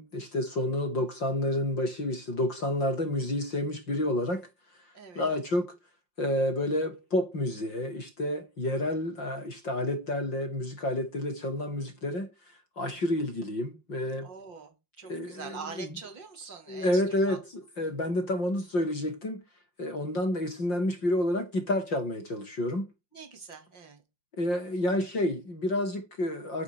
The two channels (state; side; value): late; right; 5.7 ms